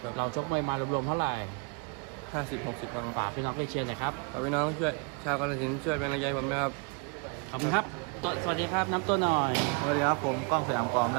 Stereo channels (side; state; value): left; quieter; 34.4 dB